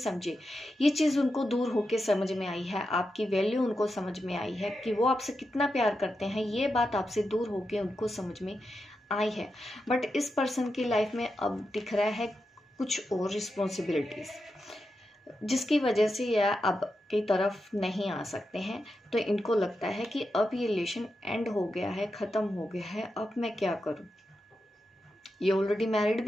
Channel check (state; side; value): normal; both; correlation 0.88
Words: ये चीज़ उनको दूर होके समझ में आई है। आपकी वैल्यू उनको समझ में आई है कि वो आपसे कितना प्यार करते हैं। ये बात आपसे दूर होके उनको समझ में आई है। बट इस पर्सन की लाइफ में अब दिख रहा है कुछ और रिस्पॉन्सिबिलिटीज़, जिसकी वजह से ये अब की तरफ नहीं आ सकते हैं। तो इनको लगता है कि अब ये रिलेशन एंड हो गया है, ख़त्म हो गया है, अब मैं क्या करूं। ये ऑलरेडी मैरिड